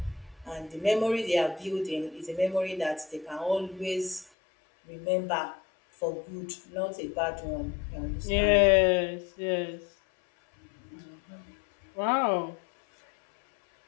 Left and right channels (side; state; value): right; drops out; at 4.3 s